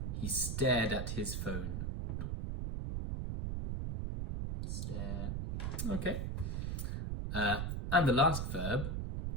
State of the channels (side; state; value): right; noise; rumble, 2 dB below the sound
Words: he stared at his phone. Stare. Okay. And the last verb,